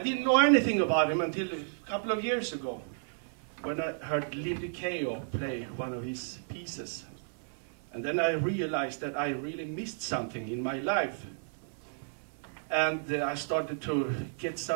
know anything about him until a couple of years ago. when I heard Lindy Kayo play one of his pieces. And then I realized that I really missed something in my life. And I started to get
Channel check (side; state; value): left; silent; 56 dB below the other